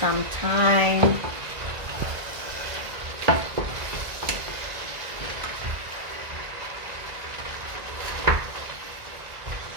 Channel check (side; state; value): left; late; 1.9 ms